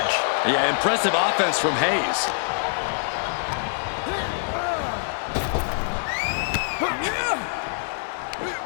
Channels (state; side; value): silent; right; digital silence